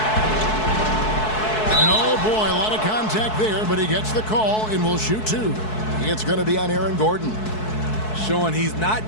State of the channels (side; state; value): right; late; 4.6 ms